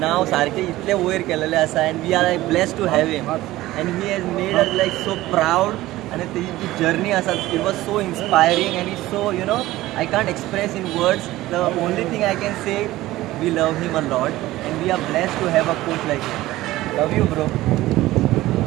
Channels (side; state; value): left; quieter; 16.8 dB